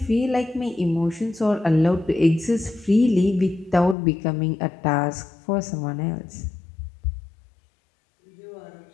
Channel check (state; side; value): drops out; right; at 4.0 s